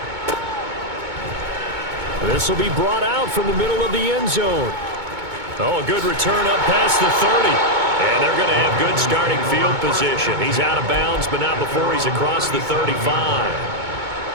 This will be brought out from the middle of the end zone. Oh, a good return up past the 30. And they're going to have good starting field position. He's out of bounds, but not before he's across the 35.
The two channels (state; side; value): late; left; 2.2 ms